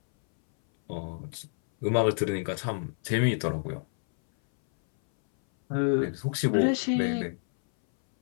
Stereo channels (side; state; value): right; silent; 59 dB below the other